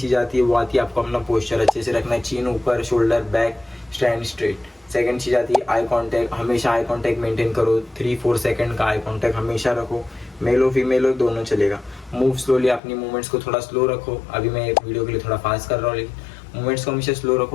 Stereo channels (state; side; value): drops out; right; at 12.8 s